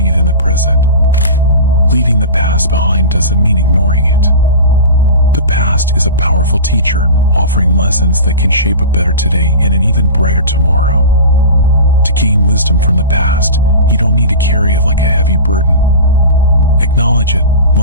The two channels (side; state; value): both; inverted; correlation -0.32